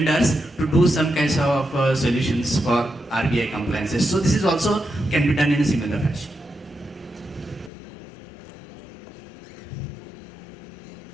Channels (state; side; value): drops out; right; at 7.7 s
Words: to do some kinds of solutions for RBI compliances. So this is also can be done in a similar fashion.